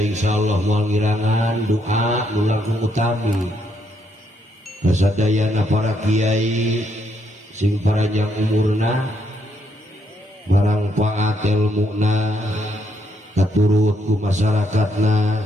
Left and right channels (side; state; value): both; normal; correlation 0.74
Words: moal ngirangan doa nu langkung utami kasadayana para kiai sing panjang umurna barang paat ilmuna katurut ku masyarakatna